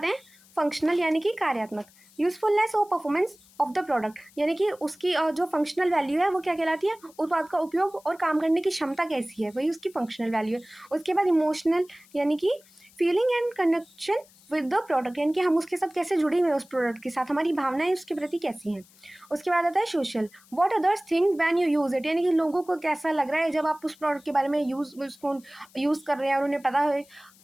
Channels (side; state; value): left; noise; hiss, 27 dB below the sound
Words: हैं फंक्शनल, यानी कि कार्यात्मक, यूजफुलनेस और परफॉर्मेंस ऑफ द प्रोडक्ट, यानी कि उसकी जो फंक्शनल वैल्यू है वो क्या कहलाती है, उत्पाद का उपयोग और काम करने की क्षमता कैसी है, वही उसकी फंक्शनल वैल्यू है। उसके बाद इमोशनल, यानी कि feeling and connection with the product, यानी कि हम उसके साथ कैसे जुड़े हुए हैं, उस प्रोडक्ट के साथ हमारी भावनाएं उसके प्रति कैसी हैं। उसके बाद आता है social, what others think when you use it, यानी कि लोगों को कैसा लग रहा है जब आप उस प्रोडक्ट के बारे में उसको यूज़ कर रहे हैं और उन्हें पता है,